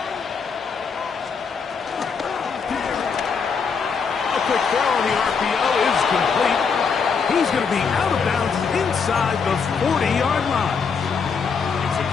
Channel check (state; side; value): quieter; right; 5.7 dB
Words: Quick throw on the RPO is complete. He's going to be out of bounds inside the 40-yard line.